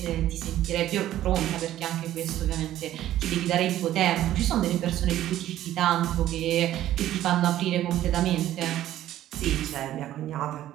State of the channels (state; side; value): quieter; left; 13.1 dB